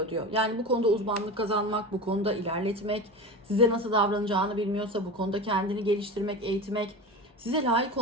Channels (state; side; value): normal; both; correlation 0.28